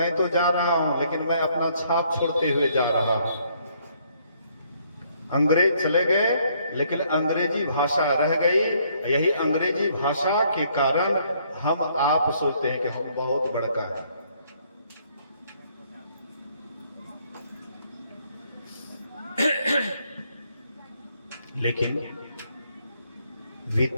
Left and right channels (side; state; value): both; inverted; correlation -0.67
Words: तो जा रहा हूं, लेकिन मैं अपना छाप छोड़ते हुए जा रहा हूं। अंग्रेज चले गए, लेकिन अंग्रेजी भाषा रह गई। यही अंग्रेजी भाषा के कारण हम आप सोचते हैं कि हम बहुत बड़का है। लेकिन